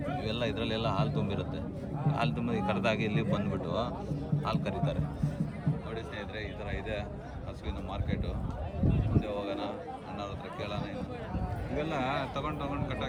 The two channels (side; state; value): both; identical; correlation 1.00